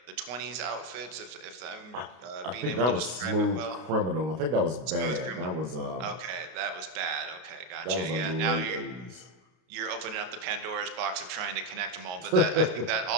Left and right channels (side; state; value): left; late; 32 ms